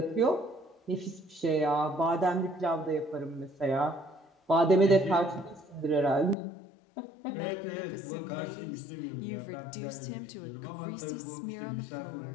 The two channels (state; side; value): drops out; right; at 6.4 s